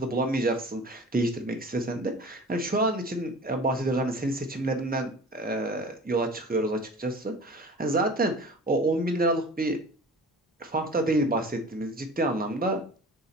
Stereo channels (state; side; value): normal; both; correlation 0.40